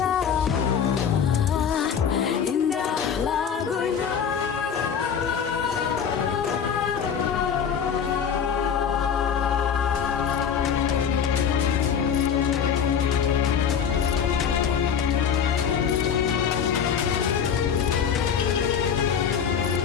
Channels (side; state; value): right; quieter; 7.4 dB